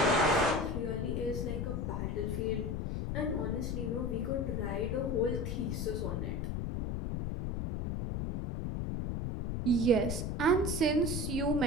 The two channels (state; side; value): noise; left; rumble, 2 dB below the sound